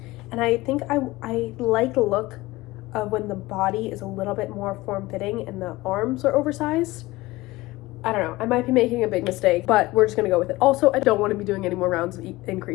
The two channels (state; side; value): quieter; right; 19.7 dB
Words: And I think I like the look of when the body is a little bit more form-fitting and the arms are oversized. I don't know, I might be making a big mistake, but we're just gonna go with it. Also, I don't want to be doing any more rounds of